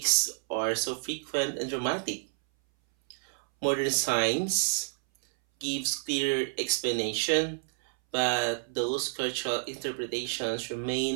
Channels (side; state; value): left; silent; 58 dB below the other